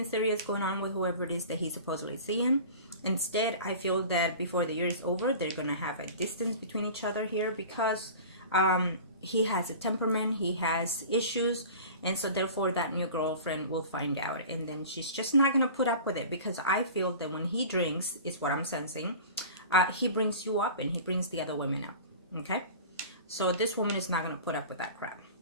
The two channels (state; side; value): inverted; both; correlation -0.38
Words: serious going on with whoever it is that he's supposedly seeing. Instead, I feel that before the year is over, they're going to have a distance between each other here because he has a temperament, he has issues, and so therefore that new girlfriend will find out, and then she's just not going to put up with it, because I feel that when he drinks, is what I'm sensing, he brings you up and he brings the other women up. Okay? So this woman is not going to put up with that crap.